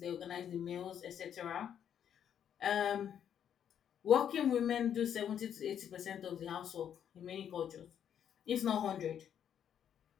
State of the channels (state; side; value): quieter; right; 9.1 dB